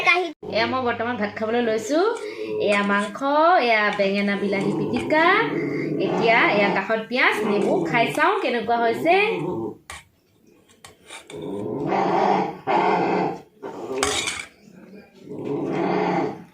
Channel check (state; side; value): identical; both; correlation 1.00